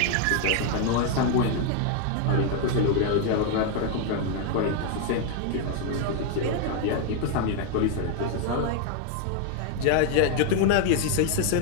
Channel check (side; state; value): both; different; correlation 0.00